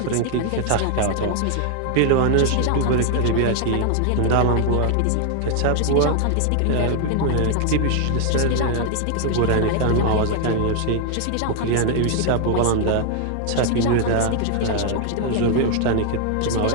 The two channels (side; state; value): both; different; correlation 0.00